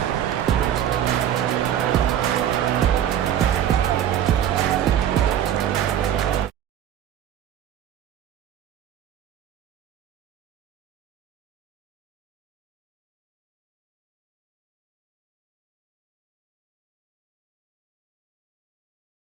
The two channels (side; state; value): left; quieter; 10.3 dB